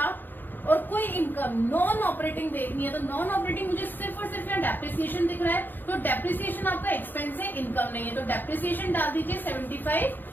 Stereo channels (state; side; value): late; right; 0.091 ms